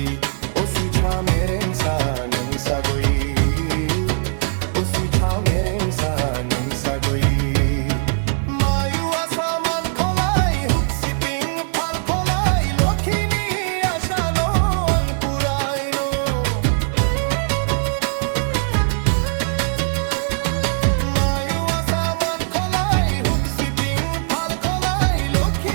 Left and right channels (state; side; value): silent; left; 59 dB below the other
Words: Osi chamereng sa nang sagoi Osi chamereng sa nang sagoi Mayu asaman kolai huksi ping phal kolai lokhini asano ang purai no Mayu asaman kolai huksi ping phal kolai